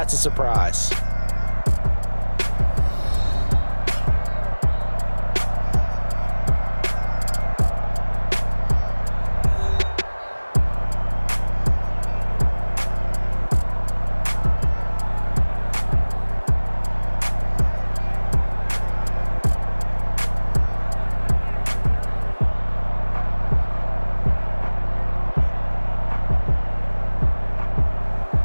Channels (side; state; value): both; inverted; correlation -1.00